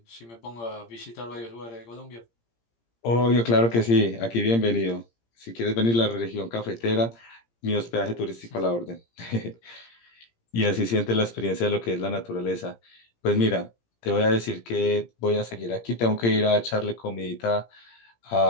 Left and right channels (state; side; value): late; right; 17 ms